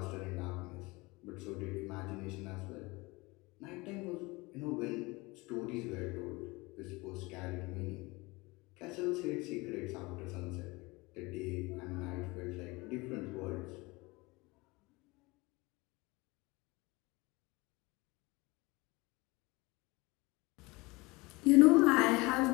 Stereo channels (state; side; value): quieter; right; 23.8 dB